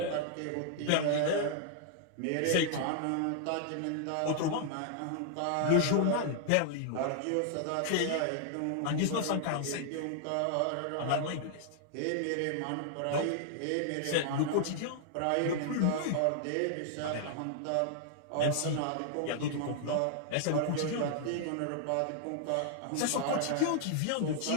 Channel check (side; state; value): both; different; correlation -0.01